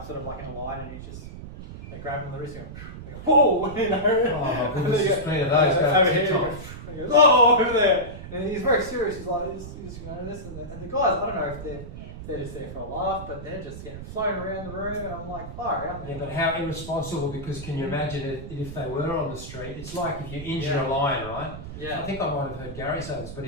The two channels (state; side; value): noise; right; rumble, 11 dB below the sound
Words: sort of like in a line, and they grab him on the wrist and go, whoa, Oh, my goodness, there's plenty of those. And he goes, oh, over there. And he's very serious. He's like, this and that. And the guys, I don't know if they're just there for a laugh, but they're just getting flown around the room, and I'm like, fire out there. Yeah, but how irresponsible, because can you imagine if they were on the street? It's like if you injure a lion, right? Yeah. I think I might have heard Gary say this, but